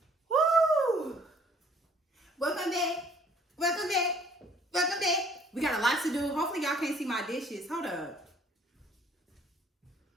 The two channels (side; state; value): both; normal; correlation 0.58